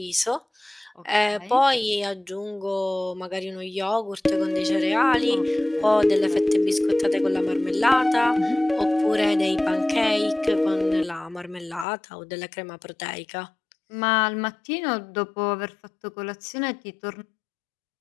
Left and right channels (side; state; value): right; drops out; at 11.9 s